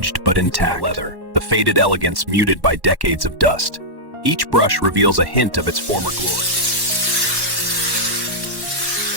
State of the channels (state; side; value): late; left; 1.1 ms